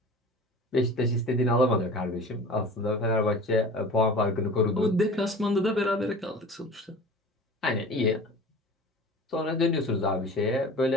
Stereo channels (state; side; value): normal; both; correlation 0.39